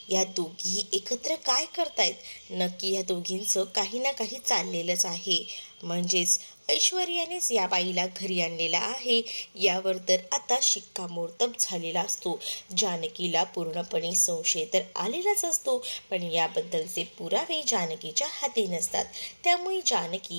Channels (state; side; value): inverted; both; correlation -1.00